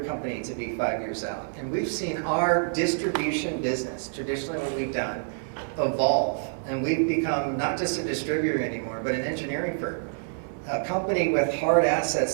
company to be 5 years out? And we've seen our distribution business, traditionally what we've done, evolve. And we've become not just a distributor anymore, but an engineering firm. A company with hard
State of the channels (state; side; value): silent; left; digital silence